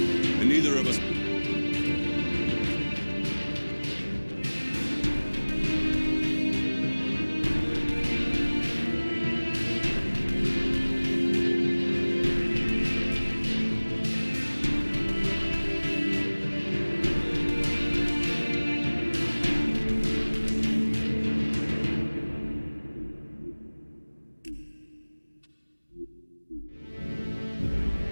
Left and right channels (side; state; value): both; inverted; correlation -1.00